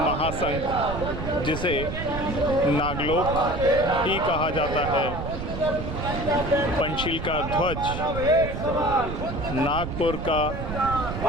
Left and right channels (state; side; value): noise; right; rumble, 6 dB below the sound